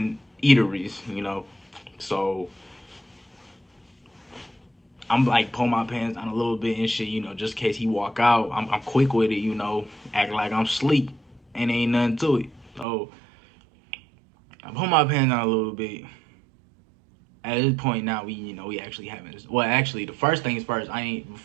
eateries, so I'm like pull my pants down a little bit and shit, just in case he walk out. I'm quick with it, act like I'm sleep and ain't nothing to it. So I pull my pants down a little bit. At this point now, we actually having this. Well, actually, the first things first. I ain't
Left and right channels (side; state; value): left; drops out; at 12.9 s